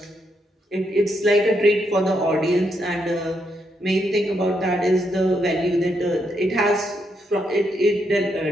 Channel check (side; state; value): both; normal; correlation 0.79